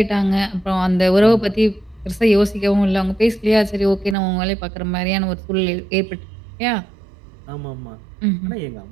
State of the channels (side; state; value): left; drops out; at 4.2 s